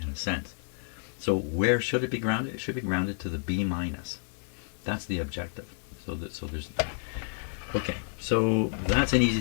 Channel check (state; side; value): silent; right; digital silence